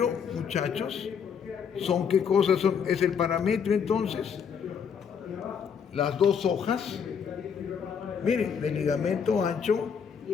muchachos, ¿son qué cosas son? Es el parametrio entonces, las dos hojas, miren, de ligamento ancho,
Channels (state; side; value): quieter; right; 7.0 dB